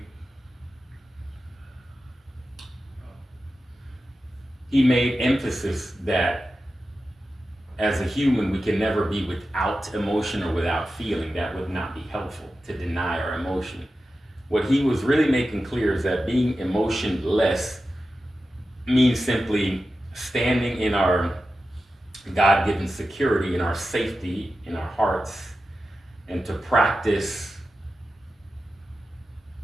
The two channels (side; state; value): both; normal; correlation 0.92